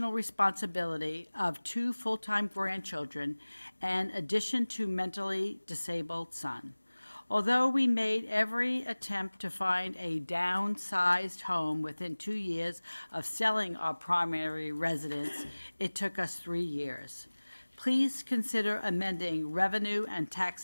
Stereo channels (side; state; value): both; inverted; correlation -1.00